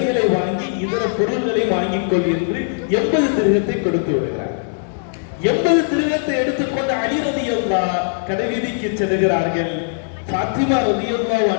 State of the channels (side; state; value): right; silent; digital silence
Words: வாங்கி இதர பொருள்களை வாங்கிக் கொள் என்று 80 திருகத்தை கொடுத்து விடுகிறார். 80 திருகத்தை எடுத்துக்கொண்டு அலி ரலியல்லாஹு கடைவீதிக்கு செல்கிறார்கள். ஃபாத்திமா ரலியல்லாஹு